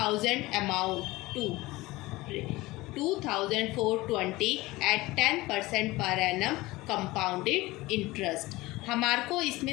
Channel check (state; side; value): quieter; right; 20.0 dB